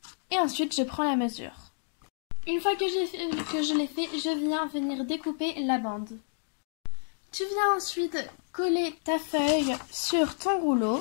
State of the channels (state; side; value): silent; right; digital silence